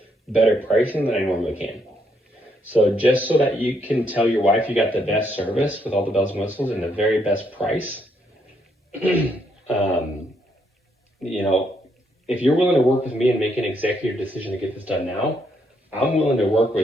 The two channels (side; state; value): both; normal; correlation 0.74